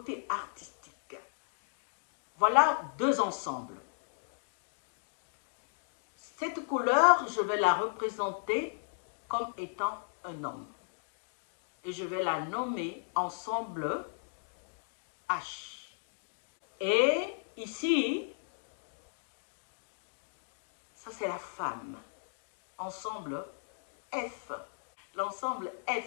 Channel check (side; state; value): right; silent; digital silence